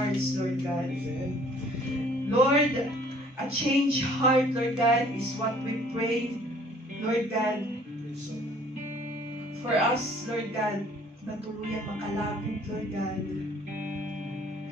Lord God. Lord, a changed heart, Lord God, is what we pray, Lord God, for us, Lord God, na tuluyang makalapit, Lord God.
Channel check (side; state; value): both; normal; correlation 0.56